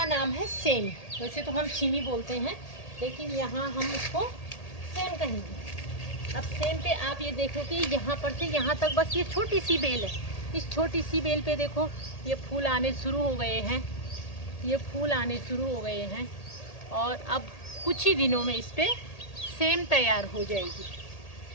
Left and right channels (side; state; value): right; late; 1.8 ms